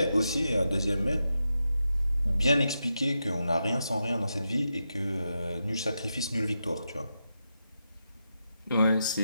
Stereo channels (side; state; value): both; inverted; correlation -0.87